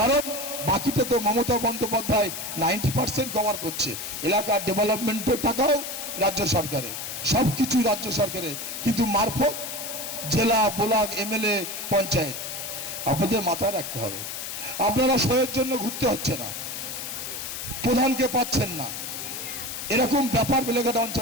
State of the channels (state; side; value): noise; left; hiss, 6 dB below the sound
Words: বাকিটা তো মমতা বন্দ্যোপাধ্যায় 90% কভার করছে। এলাকার ডেভেলপমেন্টের টাকাও রাজ্য সরকারের, সব কিছু রাজ্য সরকারের, কিন্তু মারফত জেলা ব্লক এমএলএ পঞ্চায়েত। আপনাদের মাথায় রাখতে হবে, আপনারা সয়ের জন্য ঘুরতে হচ্ছে না, প্রধানকে পাচ্ছেন না, এরকম ব্যাপার বেলেঘাটা